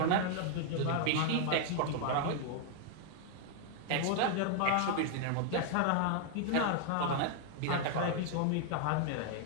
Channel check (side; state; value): both; different; correlation 0.00